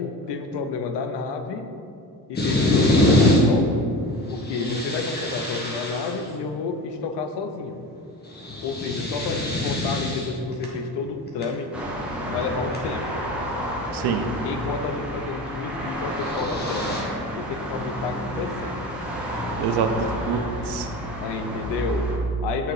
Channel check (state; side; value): normal; both; correlation 0.31